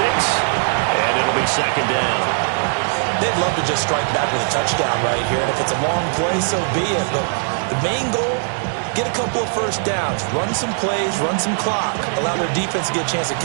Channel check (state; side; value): silent; left; digital silence